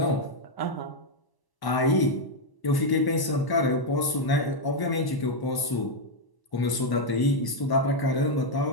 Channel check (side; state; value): right; late; 1.0 ms